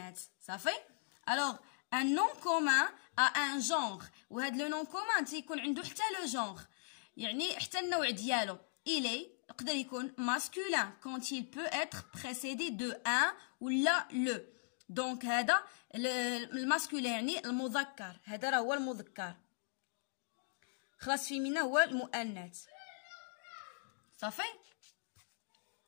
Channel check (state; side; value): silent; right; digital silence